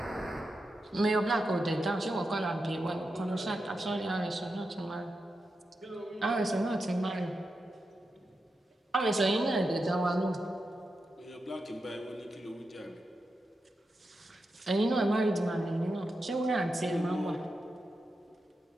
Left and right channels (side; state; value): both; normal; correlation 0.88